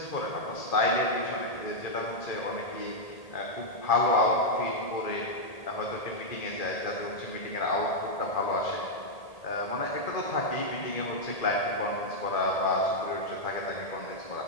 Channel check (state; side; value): late; right; 1.8 ms